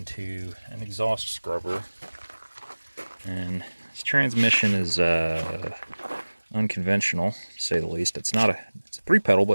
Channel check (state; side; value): inverted; both; correlation -1.00